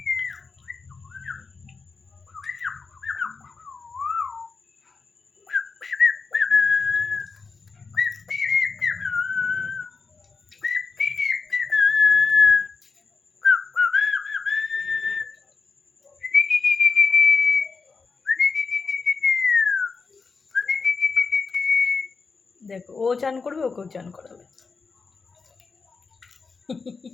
দেখো ও চান করবে, ওকেও চান করাবে।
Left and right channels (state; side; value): quieter; right; 4.7 dB